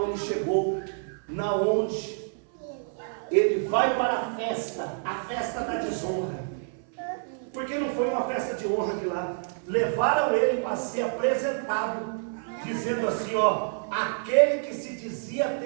ele chegou, na onde ele vai para a festa da desonra. Porque não foi uma festa de honra que lá levaram ele para ser apresentado, dizendo assim, ó, aquele que se dizia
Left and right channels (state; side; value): silent; left; 58 dB below the other